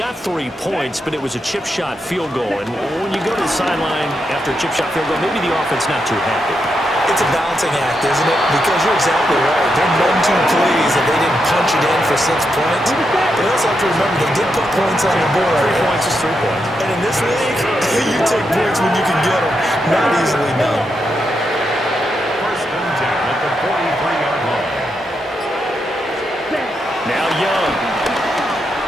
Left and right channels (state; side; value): normal; both; correlation 0.83